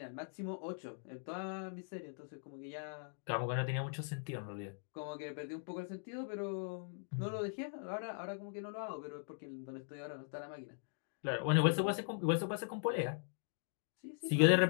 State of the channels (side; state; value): right; silent; digital silence